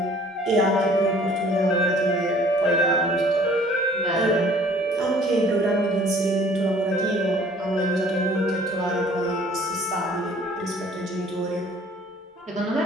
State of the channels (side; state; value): both; normal; correlation 0.54